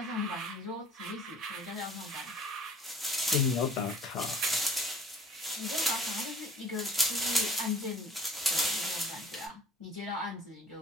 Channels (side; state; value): both; normal; correlation 0.48